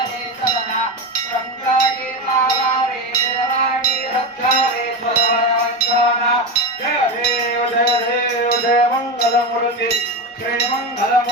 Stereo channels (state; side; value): normal; both; correlation 0.18